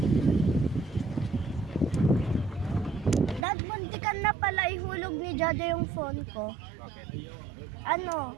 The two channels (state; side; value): drops out; left; at 3.5 s